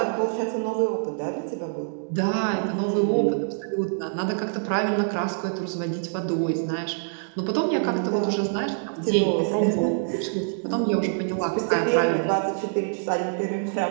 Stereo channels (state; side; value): silent; left; digital silence